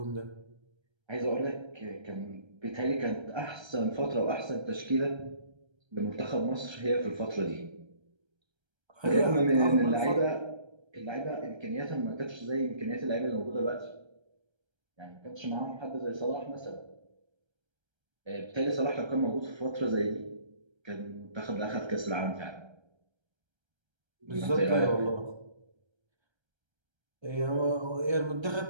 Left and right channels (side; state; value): left; late; 1.3 ms